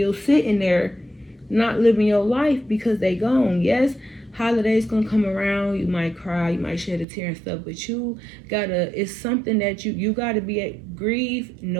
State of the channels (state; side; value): drops out; left; at 7.1 s